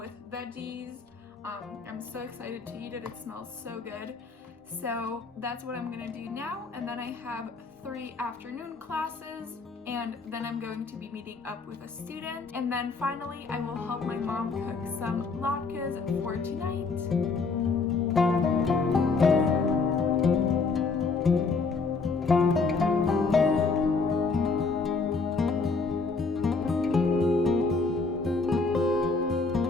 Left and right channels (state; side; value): quieter; right; 4.3 dB